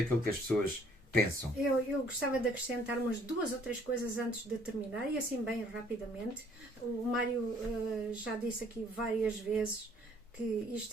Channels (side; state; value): both; normal; correlation 0.61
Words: que as pessoas pensam. Eu gostava de acrescentar umas 2 ou 3 coisas antes de terminar, e assim bem rapidamente. O Mário já disse aqui várias vezes que